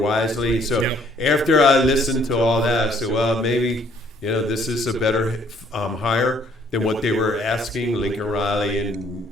So after I listened to all that, I said, well, maybe this is a better hire than what they were asking, Lincoln Riley and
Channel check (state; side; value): normal; both; correlation 0.62